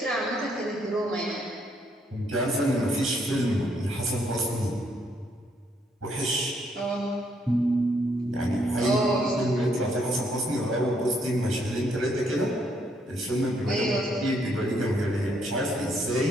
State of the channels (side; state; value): both; normal; correlation 0.72